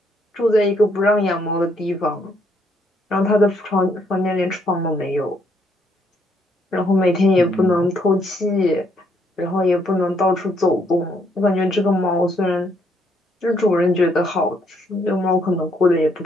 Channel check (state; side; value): normal; both; correlation 0.71